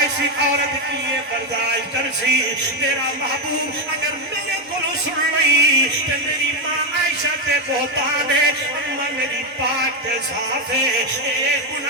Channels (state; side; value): normal; both; correlation 0.06